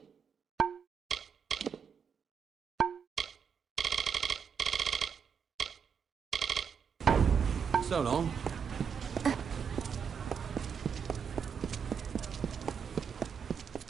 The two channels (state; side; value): quieter; left; 6.9 dB